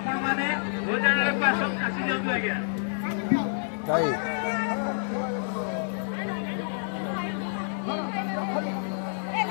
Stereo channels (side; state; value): right; silent; digital silence